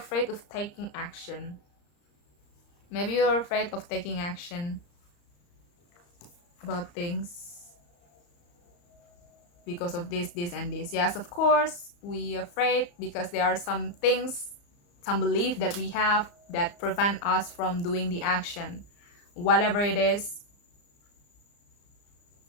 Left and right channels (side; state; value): right; late; 34 ms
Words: of taking action. Maybe you are afraid of taking action about things because of this, and this. Yes, of course, we are afraid because there are some things, some belief that we have that prevent us from doing the action, whatever it is.